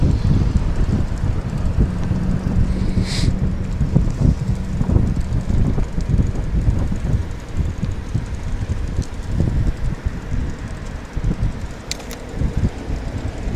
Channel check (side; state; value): both; identical; correlation 1.00